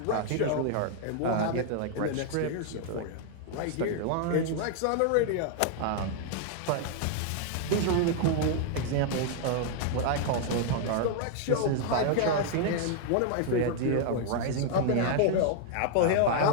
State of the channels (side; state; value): both; different; correlation 0.00